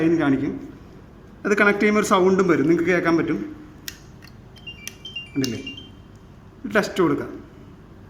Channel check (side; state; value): both; identical; correlation 1.00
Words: കാണിക്കും. അത് കണക്ട് ചെയ്യുമ്പോൾ ഒരു സൗണ്ടും വരും, നിങ്ങൾക്ക് കേൾക്കാൻ പറ്റും. കണ്ടില്ലേ, ടെസ്റ്റ് കൊടുക്കാം.